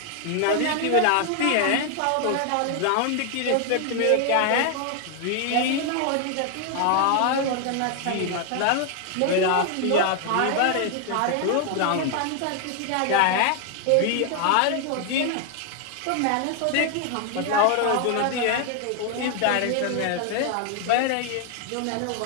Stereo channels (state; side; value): different; both; correlation 0.00